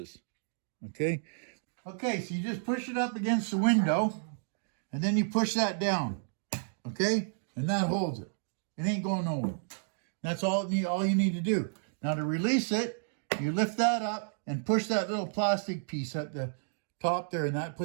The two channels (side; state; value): left; silent; digital silence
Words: okay? Okay, so you just push it up against the window and then you push that down, okay? And that holds it. It ain't going nowhere. That's all you need to do. Now to release it, you lift that up and push that little plastic piece at the top there, and that